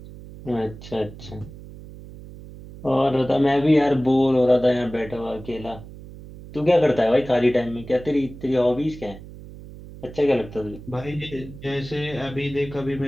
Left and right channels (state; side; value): noise; right; hum, 16 dB below the sound